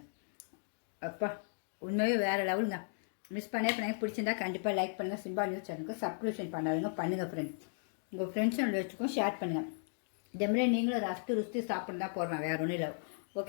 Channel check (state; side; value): silent; right; digital silence